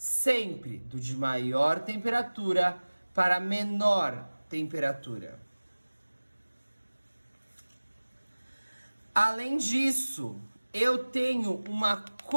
sempre do de maior temperatura para menor temperatura. Além disso, eu tenho uma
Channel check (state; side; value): inverted; both; correlation -1.00